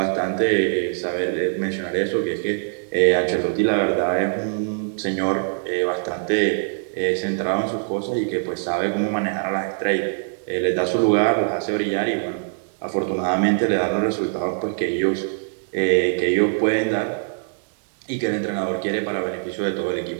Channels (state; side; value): silent; left; digital silence